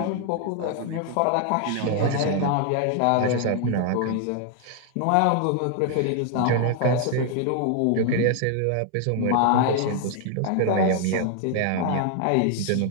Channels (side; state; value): both; different; correlation 0.00